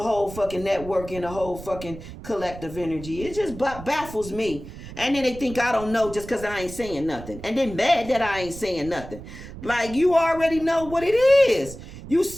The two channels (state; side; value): noise; right; rumble, 13 dB below the sound